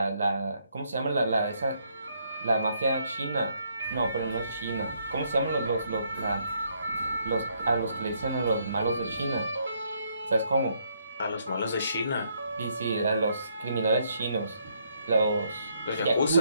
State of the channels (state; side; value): inverted; both; correlation -0.72